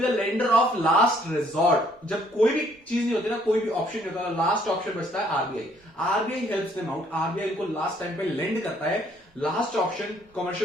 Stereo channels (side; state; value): both; normal; correlation 0.64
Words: the lender of last resort. जब कोई भी चीज नहीं होती ना, कोई भी ऑप्शन नहीं होता, लास्ट ऑप्शन बचता है RBI. RBI helps them out, RBI को लास्ट टाइम पे लेंड करता है। लास्ट ऑप्शन